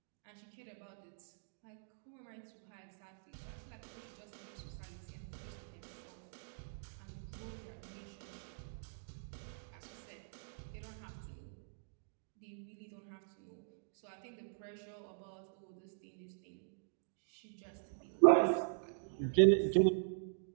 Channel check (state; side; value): silent; left; digital silence